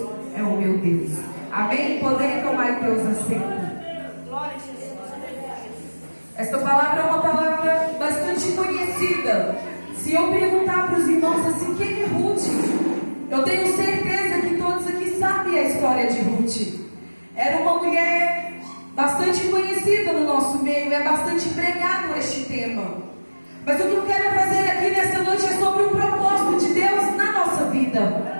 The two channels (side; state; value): both; inverted; correlation -1.00